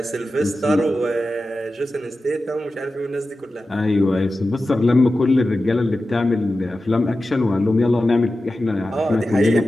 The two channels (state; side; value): normal; both; correlation 0.93